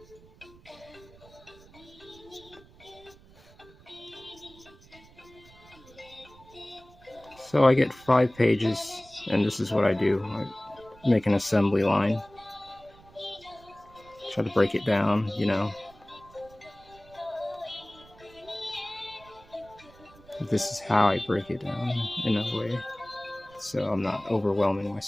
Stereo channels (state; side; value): noise; right; rumble, 24 dB below the sound